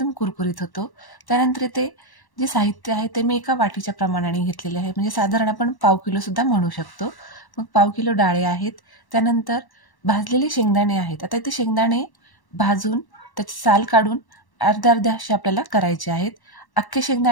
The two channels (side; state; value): right; late; 1.1 ms